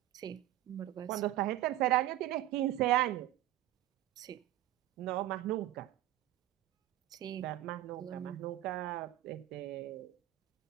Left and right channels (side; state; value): left; quieter; 14.7 dB